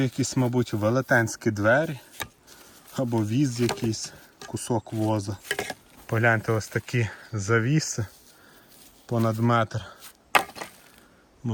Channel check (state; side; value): identical; both; correlation 1.00